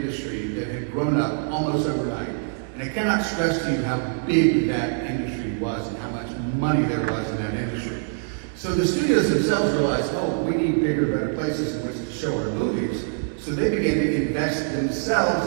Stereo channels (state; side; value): silent; left; digital silence